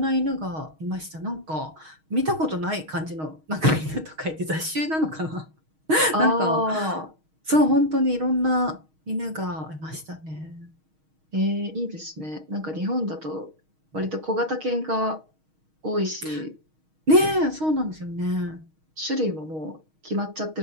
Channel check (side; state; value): left; late; 6.4 ms